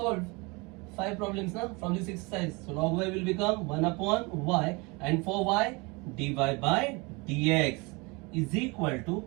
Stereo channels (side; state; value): left; quieter; 27.2 dB